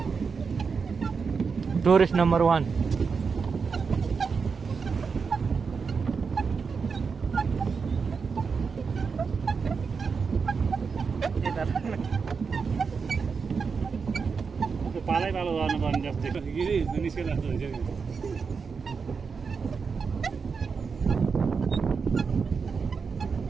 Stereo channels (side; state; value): left; quieter; 5.4 dB